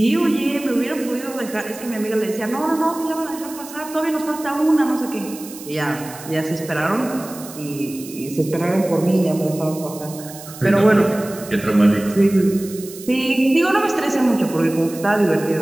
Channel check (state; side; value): noise; right; hiss, 15 dB below the sound